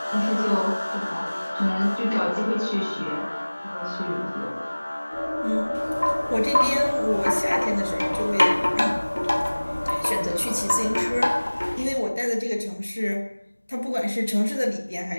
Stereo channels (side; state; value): both; inverted; correlation -1.00